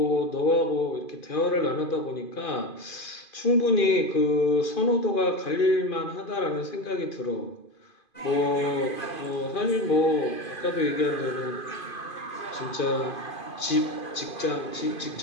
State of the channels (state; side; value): late; right; 2.5 ms